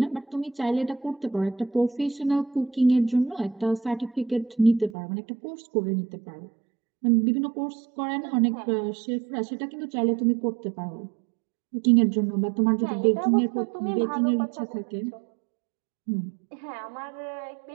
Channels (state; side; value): drops out; left; at 5.0 s